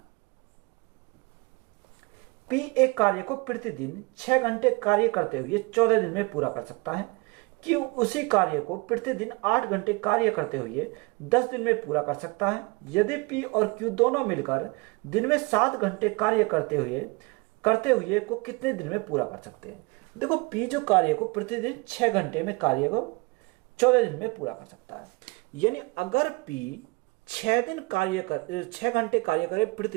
पी एक कार्य को प्रतिदिन 6 घंटे कार्य करते हुए 14 दिन में पूरा कर सकता है। क्यू उसी कार्य को प्रतिदिन 8 घंटे कार्य करते हुए 10 दिन में पूरा कर सकता है। यदि पी और क्यू दोनों मिलकर दिन में 7 घंटे कार्य करते हुए को कितने दिन में पूरा कर सकते हैं? देखो पी जो कार्य को प्रतिदिन 6 घंटे में कार्य को 14 दिन में पूरा कर सकता है। यानी अगर पी 6 घंटे कार्य करे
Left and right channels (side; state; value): left; quieter; 27.0 dB